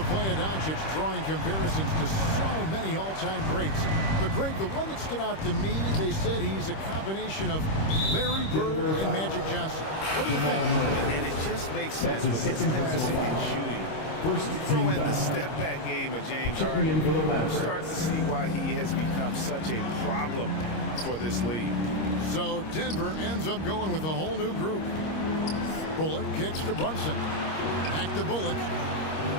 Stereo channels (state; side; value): late; right; 26 ms